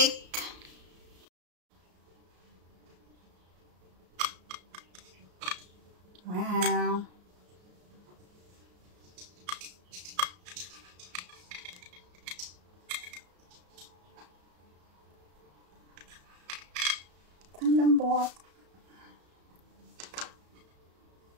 Wow! Ang lambot.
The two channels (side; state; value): left; late; 33 ms